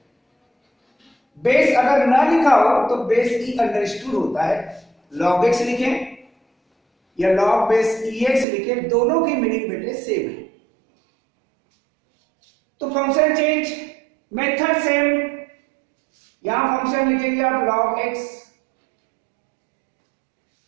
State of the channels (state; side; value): drops out; left; at 8.5 s